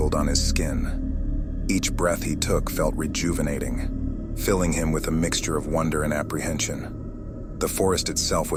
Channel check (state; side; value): identical; both; correlation 1.00